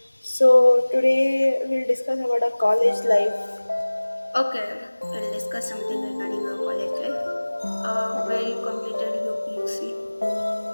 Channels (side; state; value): both; inverted; correlation -1.00